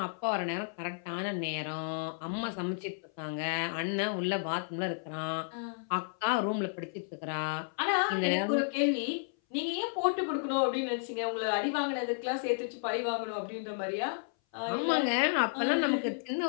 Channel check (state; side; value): silent; right; 56 dB below the other